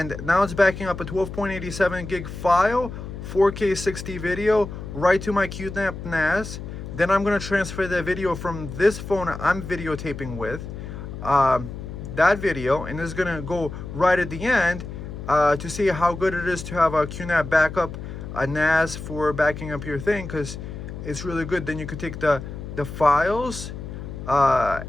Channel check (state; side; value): noise; left; hum, 9 dB below the sound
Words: now it's backing up a 12.87 gig file, 4K 60 video, right to my QNAP NAS. Then I'm going to transfer that video from this phone I'm videotaping with, that video, and this is going to go right at the end to see how good it is to have a QNAP backup, a NAS for backing up your thing, because it's really good. Then you could take the files